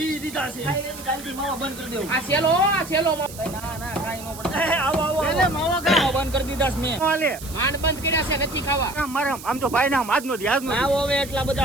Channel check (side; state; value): right; noise; hiss, 15 dB below the sound